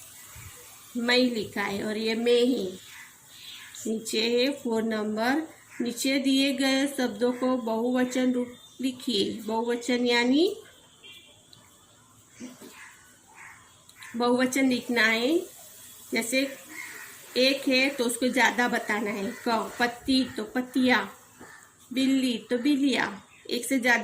मैं लिखा है और ये मैं है। नीचे है 4 नंबर, नीचे दिए गए शब्दों को बहुवचन रूप लिखिए। बहुवचन यानी बहुवचन लिखना है। जैसे एक है तो उसको ज्यादा बताना है। पत्ती, तो पत्तियां। बिल्ली, तो बिल्लियां। एक से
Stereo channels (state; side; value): identical; both; correlation 1.00